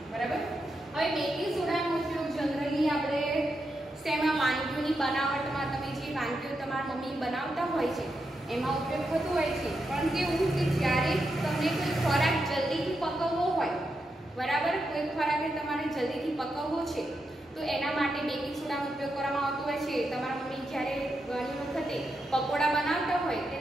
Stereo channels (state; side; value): normal; both; correlation 0.85